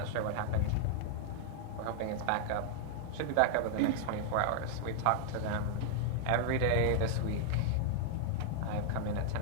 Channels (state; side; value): different; both; correlation 0.00